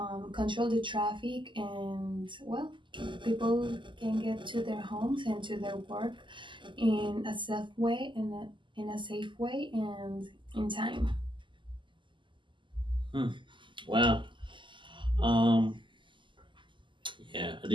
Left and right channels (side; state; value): left; late; 0.24 ms